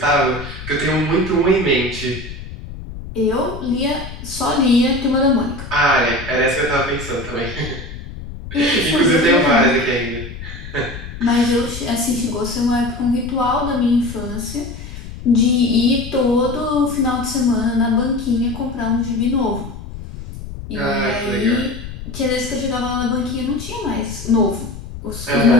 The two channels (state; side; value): noise; left; rumble, 11 dB below the sound